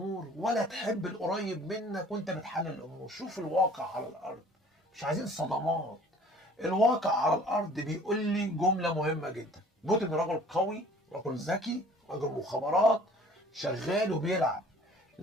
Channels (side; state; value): both; normal; correlation 0.51